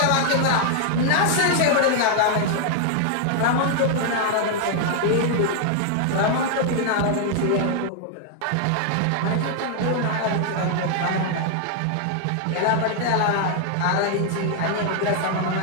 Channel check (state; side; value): different; both; correlation 0.00